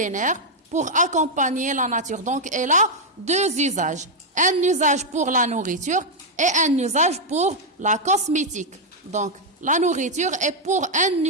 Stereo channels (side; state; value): both; normal; correlation -0.01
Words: pour accompagner la nature. Donc, elle a deux usages. Un usage pour la nourriture et un usage pour la cosmétique. Donc, la nourriture est pour un